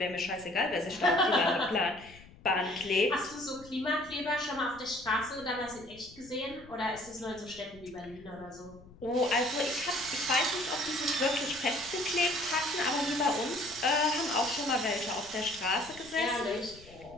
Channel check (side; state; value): left; noise; rumble, 21 dB below the sound